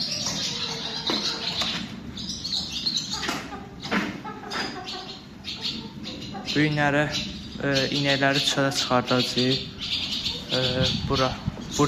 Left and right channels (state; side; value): identical; both; correlation 1.00